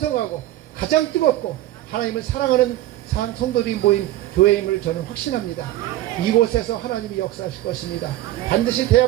가장 뜨겁고 하나님을 사랑하는 성도들이 모인 교회임을 저는 확신합니다. 이곳에서 하나님이 역사하실 것입니다. 반드시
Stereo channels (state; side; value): quieter; left; 14.9 dB